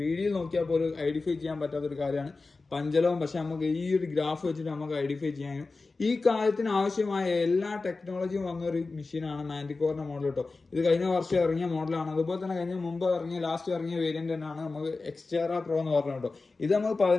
നോക്കിയാൽ പോലും ഐഡന്റിഫൈ ചെയ്യാൻ പറ്റാത്തൊരു കാര്യമാണ് പഞ്ചലോകം. പക്ഷെ നമുക്ക് ഈ ഒരു ഗ്രാഫ് വെച്ചിട്ട് നമുക്ക് ഐഡന്റിഫൈ ചെയ്യാൻ കഴിയും. ഈ കാര്യത്തിന് ആവശ്യമായ എല്ലാ ടെക്നോളജിയും വന്ന ഒരു മെഷീനാണ് മാൻറ്റിക്കോറിന്റെ മോഡൽ കേട്ടോ. ഇത് കഴിഞ്ഞ വർഷം ഇറങ്ങിയ മോഡലാണ്. അതുപോലെ തന്നെ മുമ്പ് ലാസ്റ്റ് ഇറങ്ങിയ വേരിയന്റ് തന്നെയാണ് നമുക്ക് എക്സ്ട്രാ പ്രോ എന്ന് പറഞ്ഞ കേട്ടോ. ഇത് നമുക്ക്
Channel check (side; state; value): right; quieter; 3.8 dB